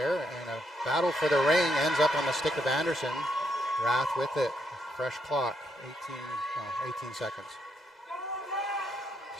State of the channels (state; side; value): normal; both; correlation 0.77